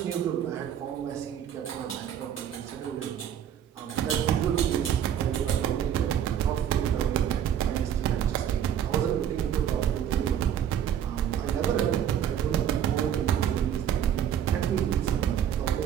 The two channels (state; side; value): quieter; left; 9.6 dB